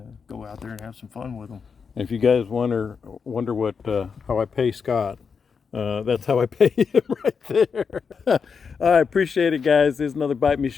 go out there and have some fun with them. If you guys wonder what how I pay Scott, that's how I pay him right there. I appreciate it, guys. This is another Bite Me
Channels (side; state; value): right; quieter; 5.9 dB